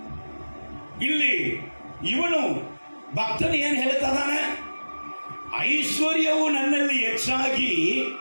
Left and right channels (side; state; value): both; inverted; correlation -1.00